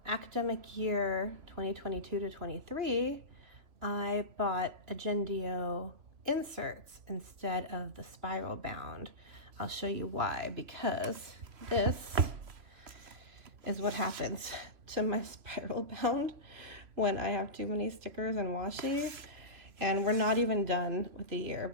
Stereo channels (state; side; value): late; left; 3.0 ms